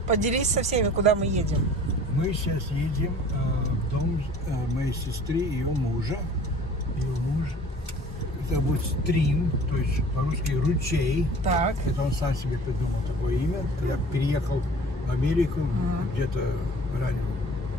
поделись со всеми, куда мы едем. Мы сейчас едем в дом моей сестры и ее мужа. Ее муж зовут Стрим, то есть по-русски ручей. Так. Это он сам себе придумал такое имя. Я переехал в Америку где-то ранее,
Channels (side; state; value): both; normal; correlation 0.47